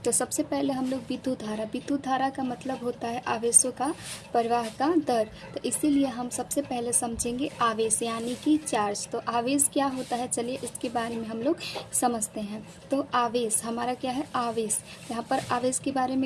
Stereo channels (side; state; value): both; identical; correlation 1.00